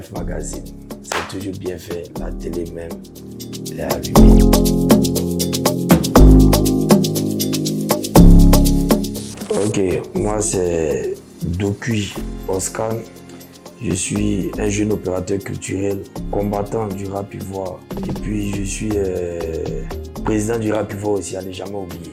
Magazine. C'est toujours bien fait, la télé même, elle est allumée. Ok, moi c'est Dokui Oscar. Je suis un jeune opérateur culturel, combattant du rap ivoire. Et puis je suis président du rap ivoire aussi, à ne jamais oublier.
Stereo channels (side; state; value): both; identical; correlation 1.00